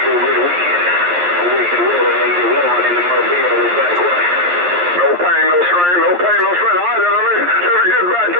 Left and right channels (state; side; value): late; left; 11 ms